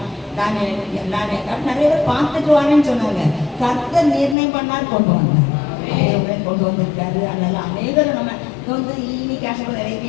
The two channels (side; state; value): right; drops out; at 4.4 s